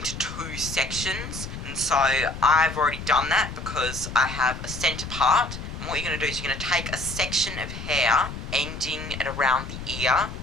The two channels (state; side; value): noise; left; rumble, 9 dB below the sound